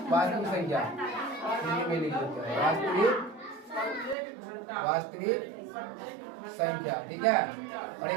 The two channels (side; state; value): left; drops out; at 4.2 s